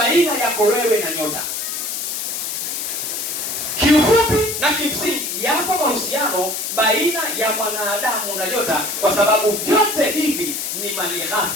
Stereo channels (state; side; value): noise; left; hiss, 3 dB below the sound